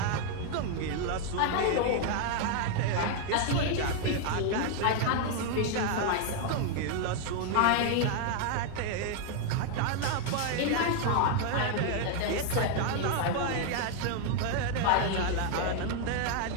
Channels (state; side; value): different; both; correlation 0.00